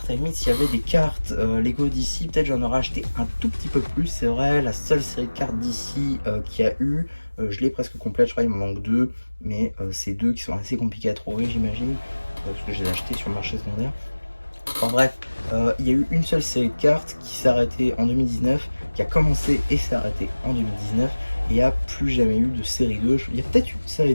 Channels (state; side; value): inverted; both; correlation -1.00